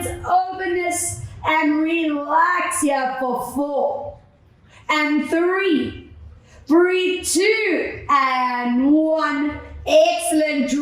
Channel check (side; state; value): both; identical; correlation 1.00